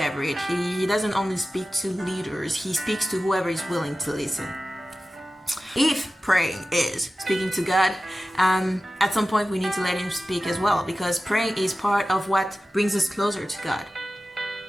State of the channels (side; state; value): both; normal; correlation 0.94